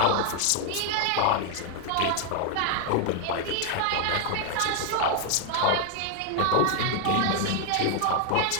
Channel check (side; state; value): both; different; correlation 0.00